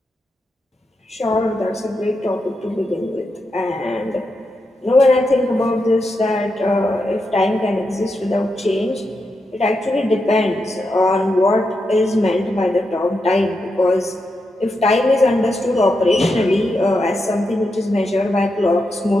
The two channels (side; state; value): both; normal; correlation 0.86